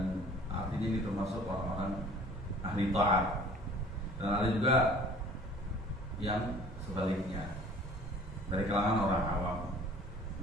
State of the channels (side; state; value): both; normal; correlation 0.49